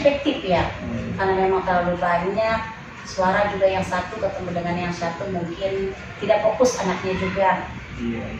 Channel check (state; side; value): identical; both; correlation 1.00